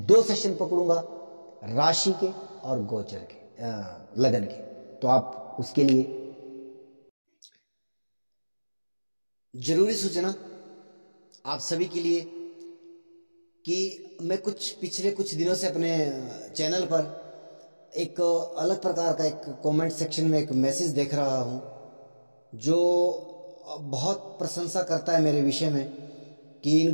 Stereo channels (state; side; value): inverted; both; correlation -1.00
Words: 2 सेशन पकड़ूंगा, राशि के और गोचर के, लगन के, तो आप उसके लिए जरूरी सूचना आप सभी के लिए कि मैं पिछले कुछ दिनों से अपने चैनल पर एक अलग प्रकार का एक कमेंट सेक्शन में एक मैसेज देख रहा हूं, जो बहुत प्रशंसा करता है मेरे विषय में कि इन